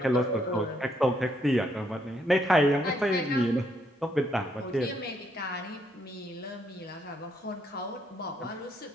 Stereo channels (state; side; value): normal; both; correlation 0.73